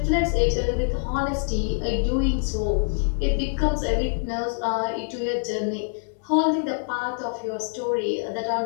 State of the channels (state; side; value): silent; right; 62 dB below the other